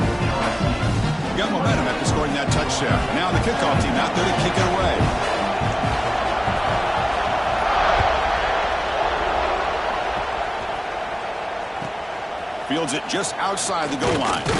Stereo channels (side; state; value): both; identical; correlation 1.00